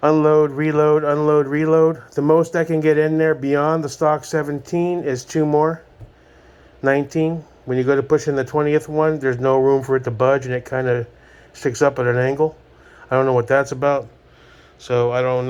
Unload, reload, unload, reload. The most I can get in there beyond the stock 17 is 2 more. 19. When you go to push in the 20th one, there's no room for it to budge, and it kind of sticks up at an angle. I don't know what that's about. So I don't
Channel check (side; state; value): both; identical; correlation 1.00